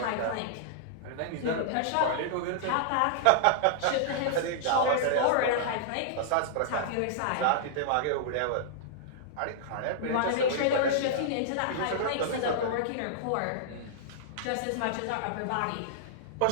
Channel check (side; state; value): both; different; correlation -0.02